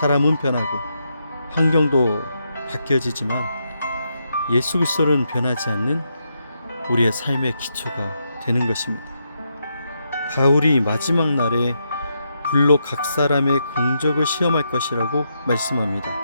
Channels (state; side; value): inverted; both; correlation -0.82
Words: 변하고 환경도 바뀌어지지만 예수 그리스도는 변하지 않는 우리의 삶의 기초가 되는 것입니다. 바울이 마지막 날에 불로 각 사람의 공적을 시험할 것이라고 말씀합니다.